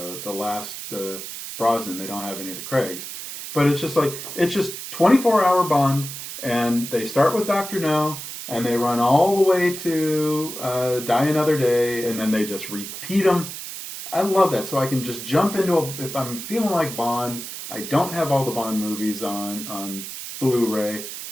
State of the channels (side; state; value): right; noise; hiss, 9 dB below the sound